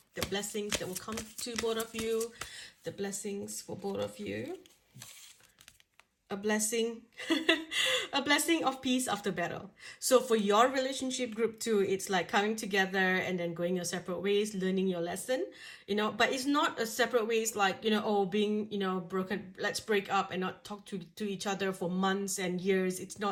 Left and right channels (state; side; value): identical; both; correlation 1.00